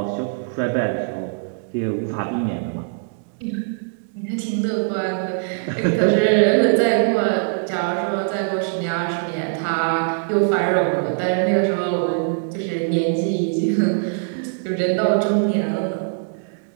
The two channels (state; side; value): silent; left; digital silence